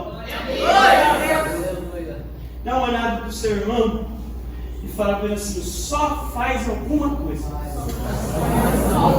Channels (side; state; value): both; identical; correlation 1.00